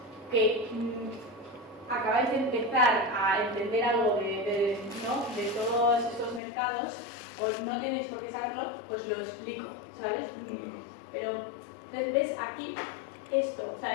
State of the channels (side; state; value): right; drops out; at 6.4 s